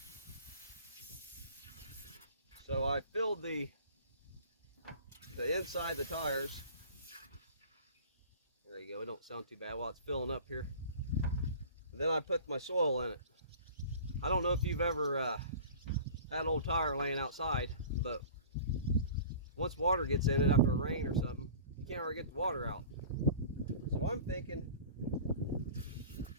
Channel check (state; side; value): inverted; both; correlation -0.41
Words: So I filled the inside of the tires. There you go. It don't sound too bad while it's filling up here. And then I put my soil in it. I don't know if you've ever had an old tire laying outside, but once water gets in it after a rain or something, you can't really get the water out. So I'm thinking